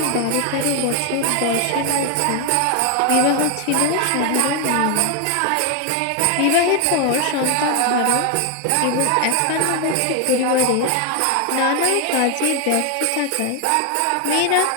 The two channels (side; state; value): both; different; correlation 0.00